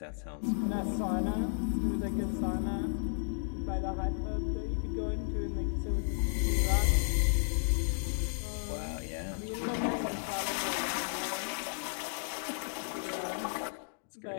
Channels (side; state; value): right; silent; digital silence